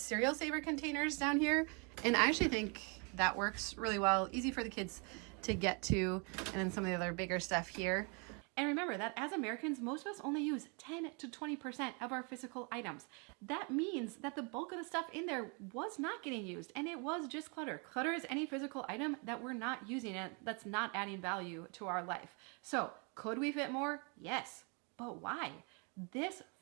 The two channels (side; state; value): left; quieter; 34.5 dB